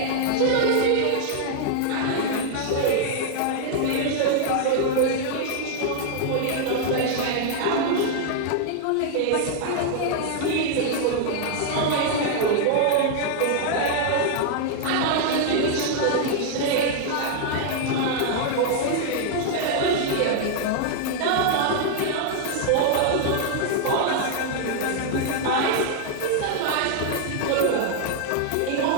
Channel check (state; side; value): different; both; correlation -0.01